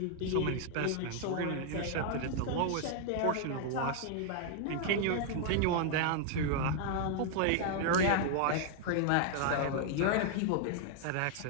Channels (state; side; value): different; both; correlation 0.00